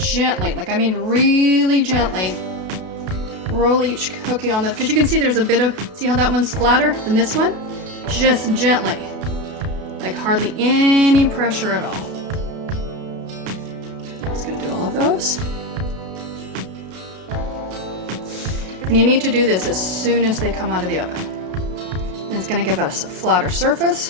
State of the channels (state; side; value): late; left; 32 ms